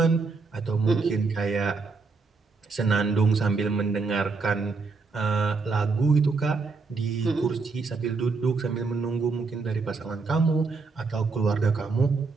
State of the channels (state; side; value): quieter; left; 4.3 dB